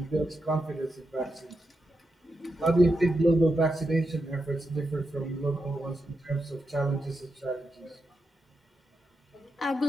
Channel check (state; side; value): normal; both; correlation 0.87